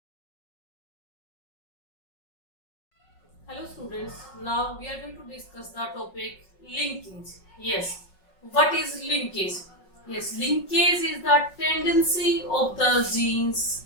students, now we are going to discuss the topic linkage. Yes, what is linkage? Yes, linkage is the tendency of the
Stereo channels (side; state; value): right; late; 5.4 ms